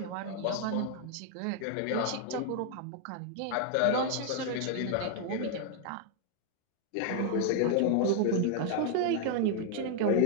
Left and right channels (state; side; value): different; both; correlation 0.00